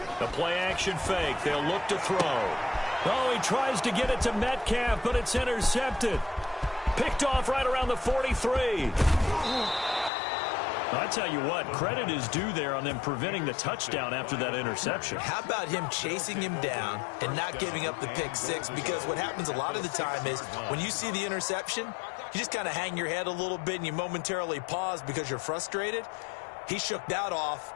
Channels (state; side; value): drops out; right; at 10.1 s